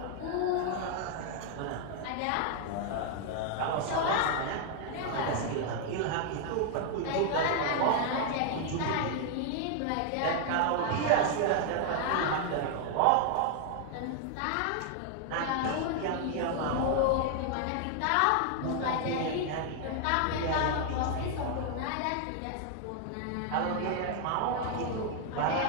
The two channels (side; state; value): both; different; correlation 0.00